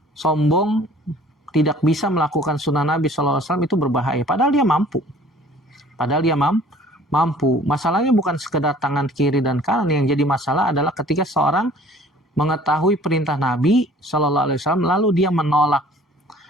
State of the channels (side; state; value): both; normal; correlation 0.52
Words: sombong tidak bisa melakukan sunnah Nabi SAW itu berbahaya. Padahal dia mampu. Mampu. Masalahnya bukan sekedar tangan kiri dan kanan. Yang jadi masalah adalah ketika seorang mengetahui perintah Nabi SAW lalu dia